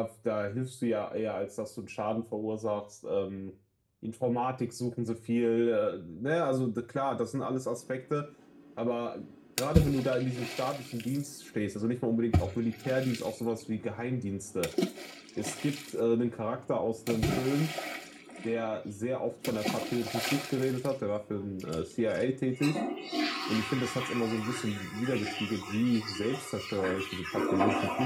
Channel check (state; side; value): identical; both; correlation 1.00